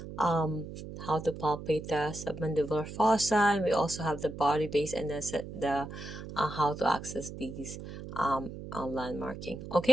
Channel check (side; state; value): right; noise; hum, 10 dB below the sound